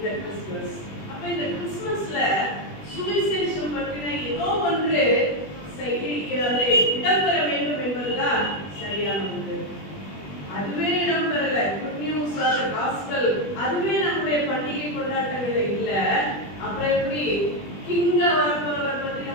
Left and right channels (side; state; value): right; late; 20 ms